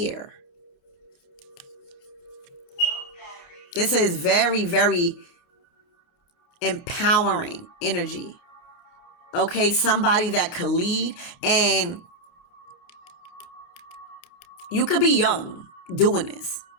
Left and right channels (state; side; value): late; right; 28 ms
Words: This is very, very empowering energy. Okay. Somebody that could lead, and you could be young doing this.